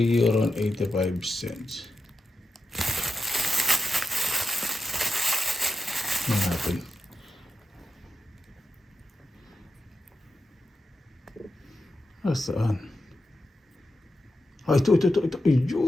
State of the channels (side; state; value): both; normal; correlation 0.88